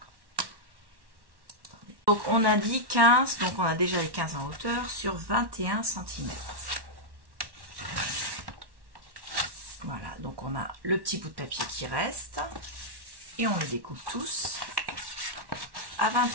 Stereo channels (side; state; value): left; late; 1.1 ms